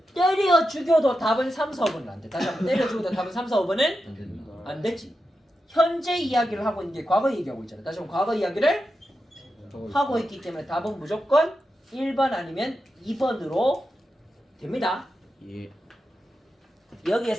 때려 죽여도 답은 3, 4번은 안 돼. 다시 한번 때려 죽여도 답은 3, 4, 5번은 안 된다. 안 되지. 현재 이야기를 하고 있는 게 과거 얘기하고 있잖아. 다시 한번 과거 이야기를 하고 있기 때문에 답은 무조건 1번 아니면 2번으로 됩니다. 예.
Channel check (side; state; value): both; normal; correlation 0.89